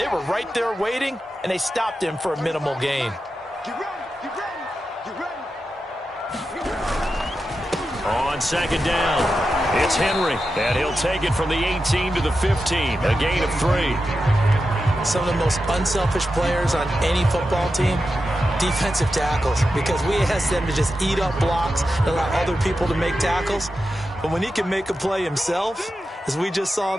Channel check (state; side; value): normal; both; correlation 0.90